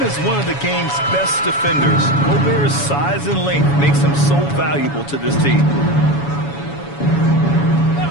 as one of the game's best defenders, Gobert's size and length makes him so valuable to this team.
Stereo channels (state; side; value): late; right; 7.1 ms